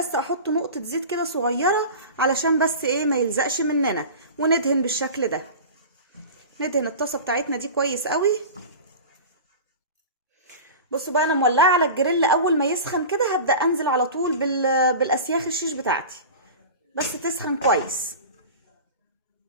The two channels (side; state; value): both; inverted; correlation -0.33